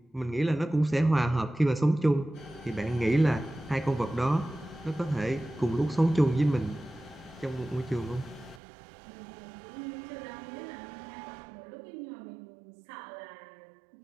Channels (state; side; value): drops out; left; at 8.6 s